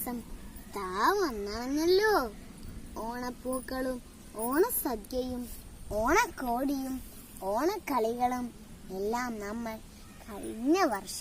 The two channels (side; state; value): both; identical; correlation 1.00